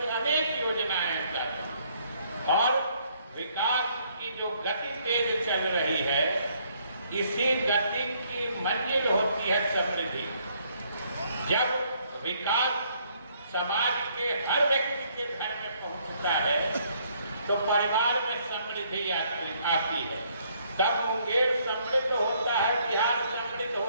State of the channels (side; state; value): both; inverted; correlation -0.67